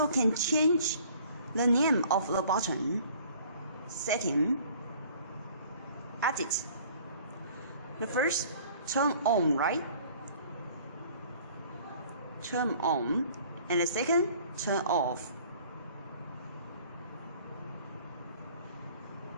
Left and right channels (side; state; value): both; inverted; correlation -0.53